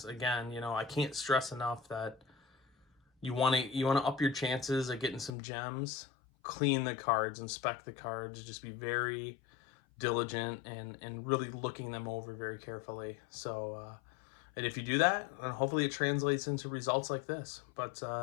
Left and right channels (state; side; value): drops out; right; at 5.3 s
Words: Again, you know, I can't stress enough that you want to up your chances at getting some gems. Clean the cards, inspect the cards, just be very diligent and really looking them over very carefully. So and if you do that, and hopefully it translates into results like this. But